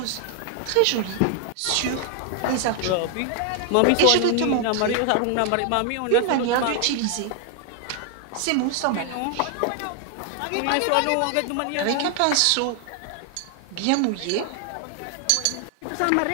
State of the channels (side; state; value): both; different; correlation 0.00